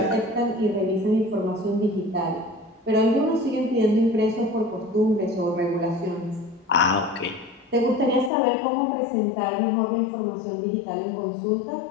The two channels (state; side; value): drops out; right; at 8.3 s